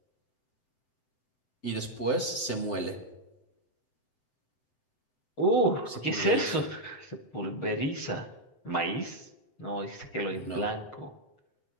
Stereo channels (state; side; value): late; right; 7.8 ms